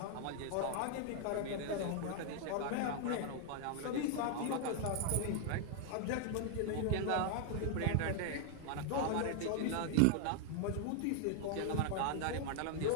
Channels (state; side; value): different; both; correlation 0.00